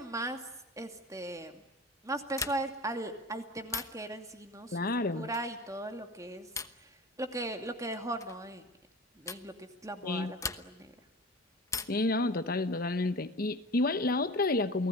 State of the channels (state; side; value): normal; both; correlation 0.35